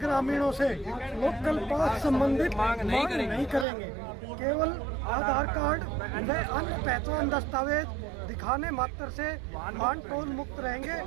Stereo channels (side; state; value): left; drops out; at 3.7 s